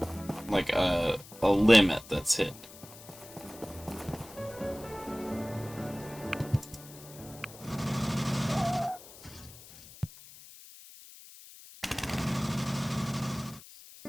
like a limit that's hit.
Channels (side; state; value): left; noise; hiss, 18 dB below the sound